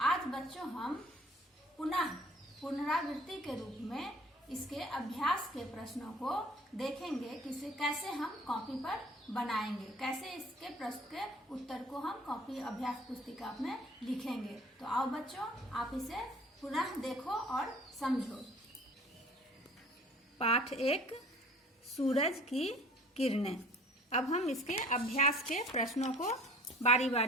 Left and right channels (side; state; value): both; normal; correlation 0.50